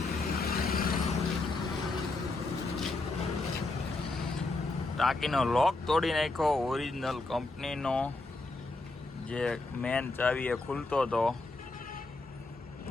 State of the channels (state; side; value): quieter; right; 3.2 dB